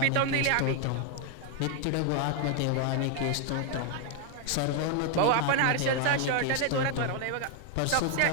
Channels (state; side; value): different; both; correlation 0.00